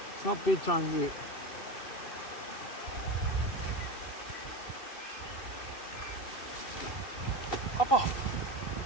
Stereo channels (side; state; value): right; late; 2.7 ms